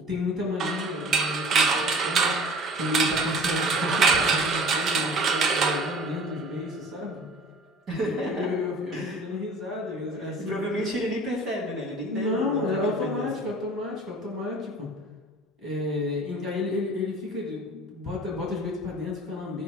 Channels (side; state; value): both; normal; correlation 0.43